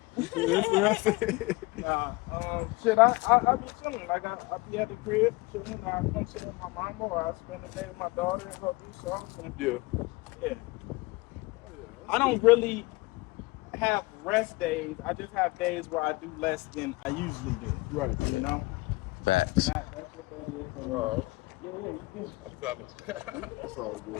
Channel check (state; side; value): quieter; right; 23.0 dB